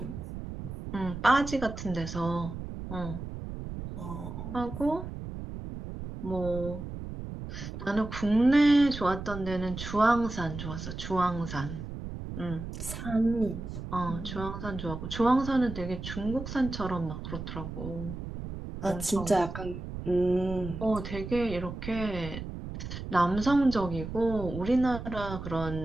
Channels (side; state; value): right; noise; rumble, 8 dB below the sound